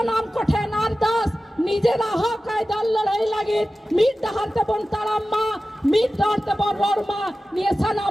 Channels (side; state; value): both; normal; correlation 0.95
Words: কোঠে নারদাস নিজেরা হকায় দল লড়াই লাগে মিট ডাহারতে বন তারাম্মা মিট ডাহারতে বন বর্মা নিয়ে